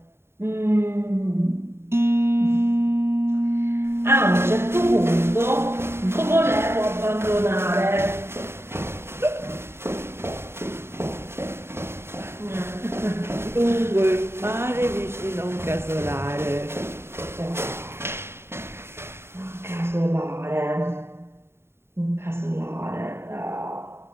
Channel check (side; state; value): left; late; 0.12 ms